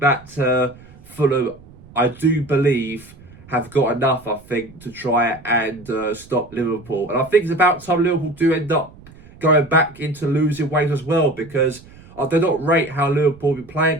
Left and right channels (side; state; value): right; noise; rumble, 22 dB below the sound